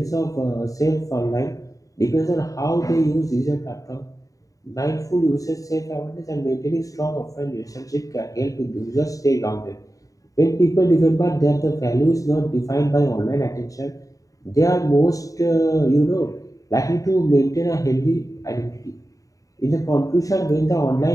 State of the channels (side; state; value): right; late; 0.16 ms